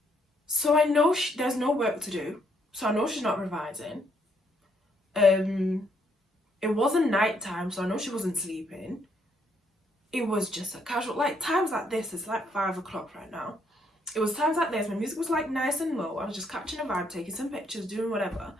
So I know there's no work to do, so I know she's not revising. It wasn't night time, so I know she wasn't sleeping. It was just a casual, like times like this, it's like 5 o'clock right now. It was times like this, my music was like nice and low. I was just catching a vibe, taking some pictures, doing whatever.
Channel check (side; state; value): both; normal; correlation 0.72